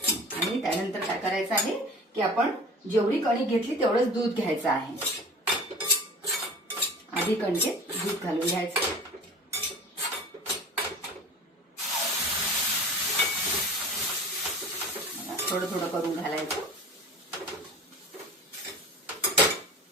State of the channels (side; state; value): both; normal; correlation 0.39